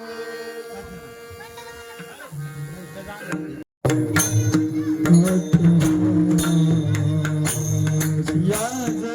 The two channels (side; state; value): both; identical; correlation 1.00